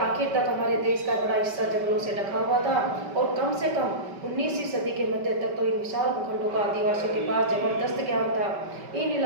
आखिर तक हमारे देश का बड़ा हिस्सा जंगलों से ढका हुआ था और कम से कम 19वीं सदी के मध्य तक तो इन विशाल भूखंडों का आदिवासियों के पास जबरदस्त ज्ञान था। इन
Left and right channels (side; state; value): left; late; 5.2 ms